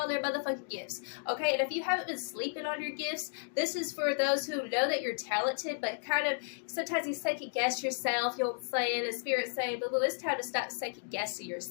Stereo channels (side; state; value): right; silent; digital silence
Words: their motherfucking gifts, okay? And if you haven't been sleeping on your gifts, this is for those who know that you're talented, but kind of sometimes you second guess yourself, you know what I'm saying? And Spirit saying, boo-boo, it's time to stop second guessing